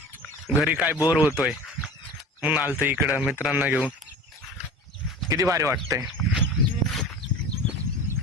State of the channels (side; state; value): both; normal; correlation 0.37